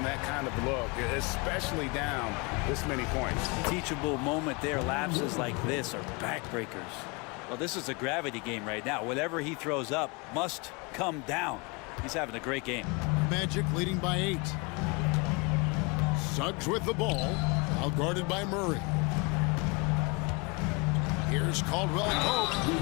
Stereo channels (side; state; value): right; quieter; 29.4 dB